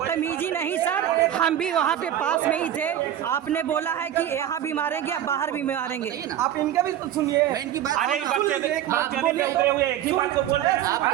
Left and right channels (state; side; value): quieter; left; 11.3 dB